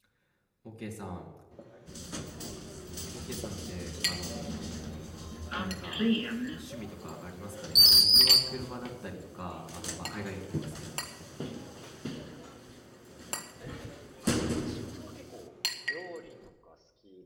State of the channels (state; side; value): identical; both; correlation 1.00